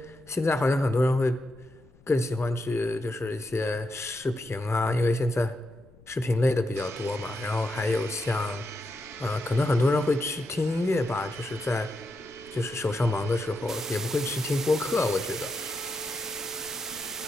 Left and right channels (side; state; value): left; noise; rumble, 26 dB below the sound